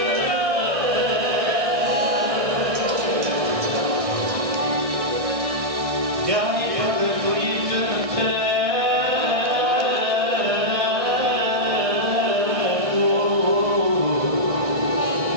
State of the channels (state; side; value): late; left; 1.6 ms